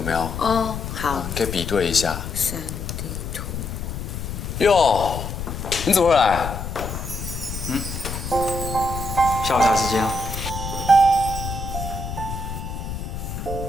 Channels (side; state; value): left; noise; rumble, 6 dB below the sound